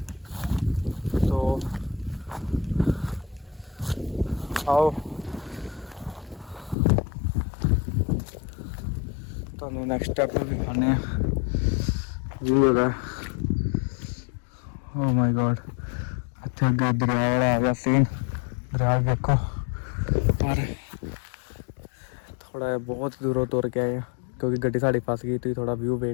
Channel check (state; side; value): drops out; right; at 6.8 s